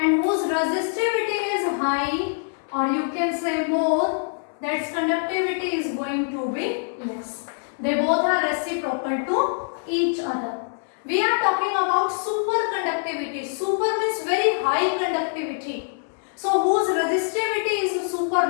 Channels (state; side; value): silent; right; 62 dB below the other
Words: whose resistivity is high, or you can say more, that's conductivity is going to be less. They both are reciprocal to each other. We are talking about superconductivity. Super means very high conductivity. So whose resistivity is super